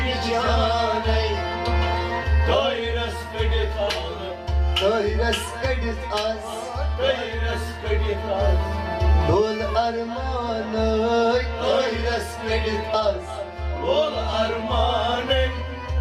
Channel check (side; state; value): both; identical; correlation 1.00